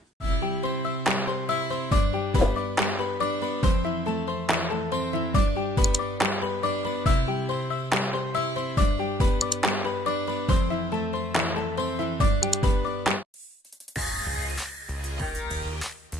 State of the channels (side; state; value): both; normal; correlation 0.65